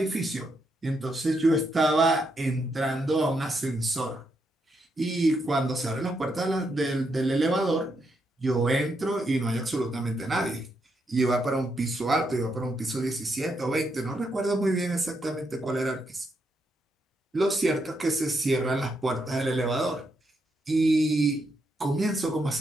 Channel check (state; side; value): normal; both; correlation 0.80